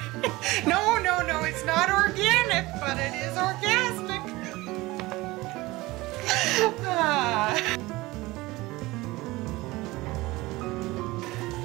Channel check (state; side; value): quieter; left; 20.5 dB